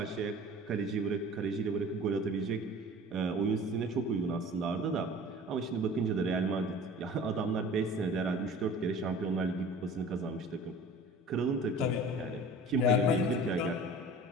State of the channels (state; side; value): normal; both; correlation 0.42